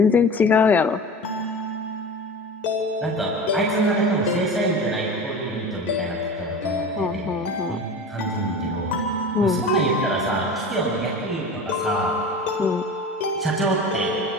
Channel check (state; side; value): normal; both; correlation 0.33